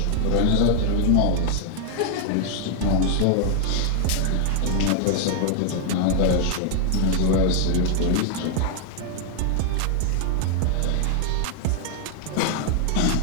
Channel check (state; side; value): different; both; correlation 0.00